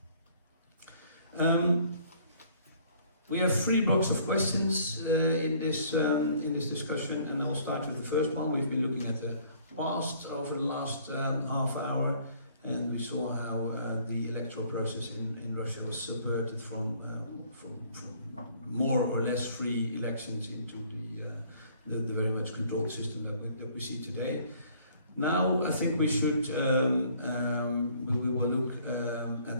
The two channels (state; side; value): inverted; both; correlation -0.58